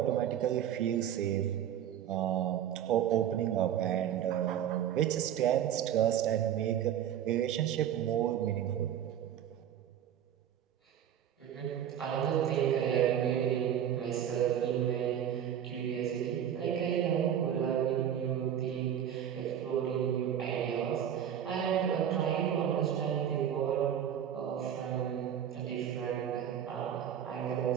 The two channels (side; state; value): left; quieter; 9.8 dB